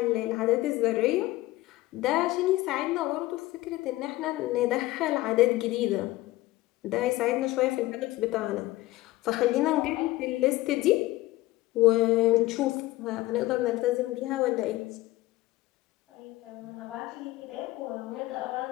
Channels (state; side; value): quieter; right; 17.9 dB